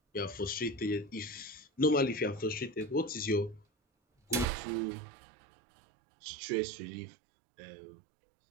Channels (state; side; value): drops out; left; at 4.5 s